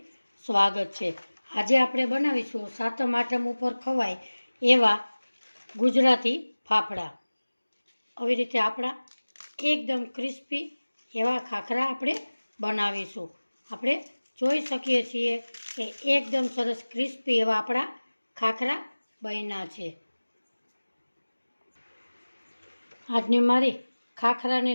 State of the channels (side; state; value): both; inverted; correlation -1.00